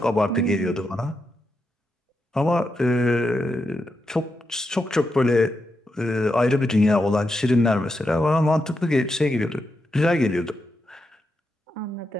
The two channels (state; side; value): normal; both; correlation 0.85